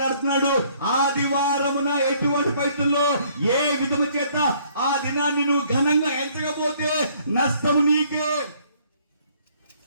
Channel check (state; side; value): inverted; both; correlation -0.62